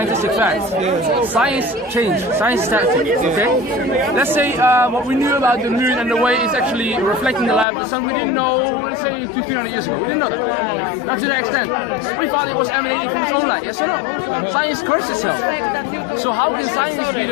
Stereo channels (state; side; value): drops out; right; at 7.7 s